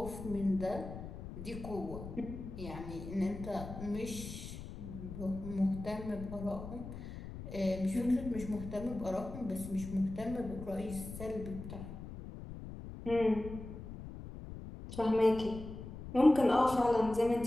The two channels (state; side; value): noise; left; rumble, 10 dB below the sound